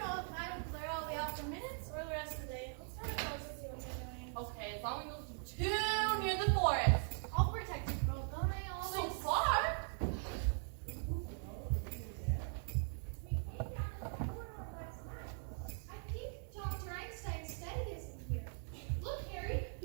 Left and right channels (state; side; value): silent; left; 50 dB below the other